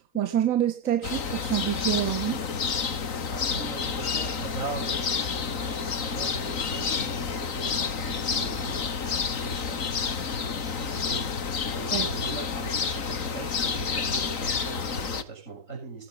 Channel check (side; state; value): right; late; 3.9 ms